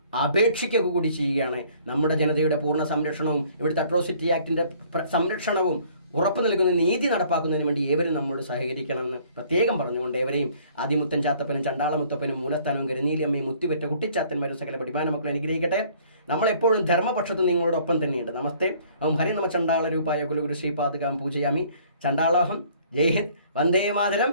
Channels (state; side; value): inverted; both; correlation -0.57